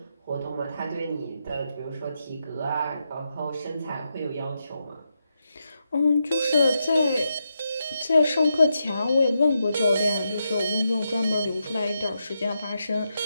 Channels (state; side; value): inverted; both; correlation -0.85